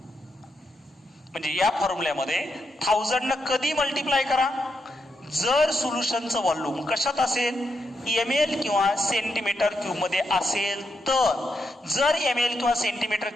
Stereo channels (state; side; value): normal; both; correlation 0.83